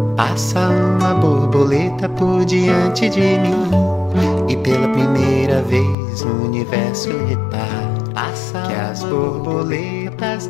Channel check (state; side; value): drops out; right; at 6.0 s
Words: Passa uma borboleta por diante de mim, e pela primeira vez no universo reparo que as borboletas